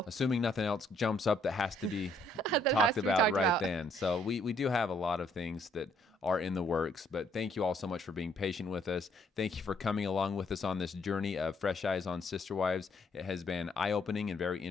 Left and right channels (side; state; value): both; normal; correlation 0.68